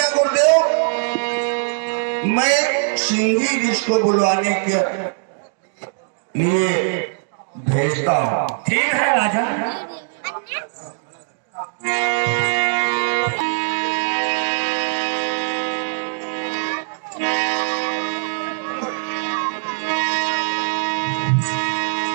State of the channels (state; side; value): silent; left; digital silence